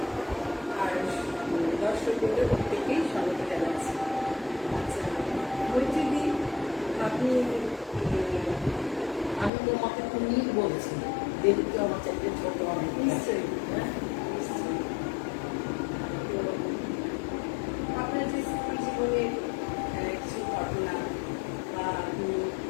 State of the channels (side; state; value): right; drops out; at 9.5 s